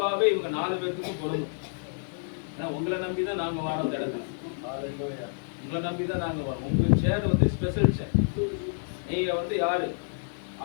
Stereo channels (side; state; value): right; silent; digital silence